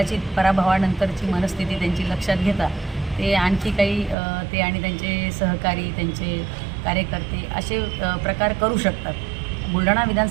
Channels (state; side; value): drops out; left; at 4.2 s